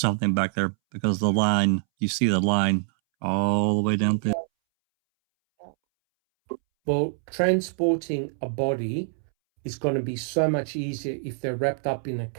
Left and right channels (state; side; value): silent; left; 62 dB below the other